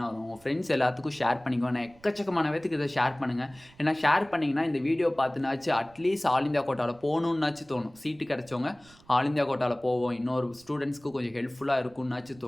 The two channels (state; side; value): noise; right; rumble, 27 dB below the sound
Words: வரும். உங்கள் ஃப்ரெண்ட்ஸ் எல்லாத்துக்கும் ஷேர் பண்ணிக்கோங்க. நான் எக்கச்சக்கமான பேத்துக்கு இதை ஷேர் பண்ணுங்கள். ஏன்னா ஷேர் பண்ணிங்கன்னா இந்த வீடியோ பார்த்துனாச்சு அட்லீஸ்ட் ஆல் இந்தியா கோட்டாவில் போகணுன்னாச்சு தோணும். சீட்டு கிடச்சவங்க ஆல் இந்தியா கோட்டாவில் போவோம், இன்னொரு ஸ்டூடெண்ட்ஸ்க்கு கொஞ்சம் ஹெல்ப்ஃபுல்லாக இருக்கும்னாச்சு